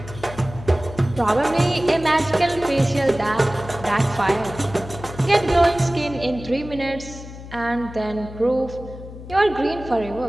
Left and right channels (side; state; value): left; noise; hum, 13 dB below the sound